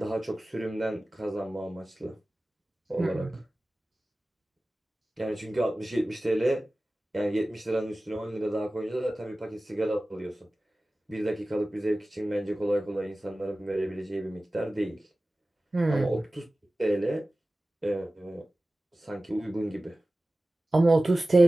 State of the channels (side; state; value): both; normal; correlation 0.96